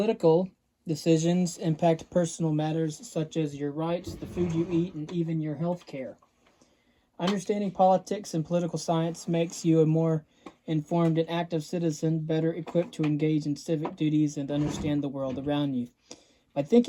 decisions impact personal matters such as your rights, the food you eat, and even your health care. Understanding politics and political science makes you a more informed and active citizen, better equipped to engage in civic duties and understand the world around you. By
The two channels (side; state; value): both; identical; correlation 1.00